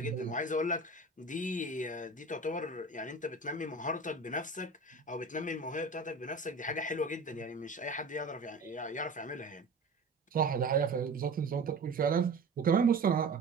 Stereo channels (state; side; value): quieter; left; 3.3 dB